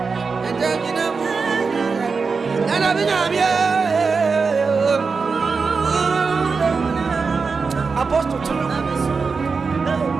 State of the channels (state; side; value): quieter; left; 4.8 dB